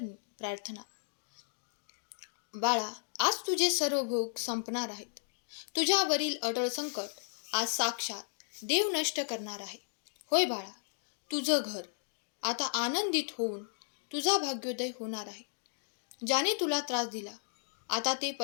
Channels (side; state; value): right; silent; digital silence